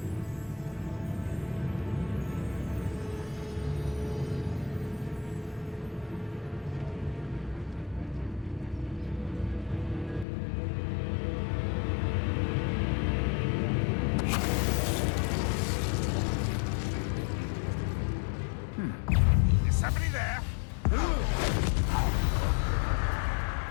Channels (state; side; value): drops out; right; at 10.2 s